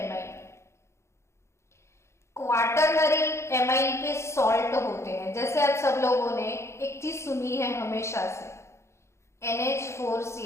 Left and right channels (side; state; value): right; late; 0.13 ms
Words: क्वाटरनरी एमाइन के सॉल्ट होते हैं, जैसे आप सब लोगों ने एक चीज सुनी है हमेशा से,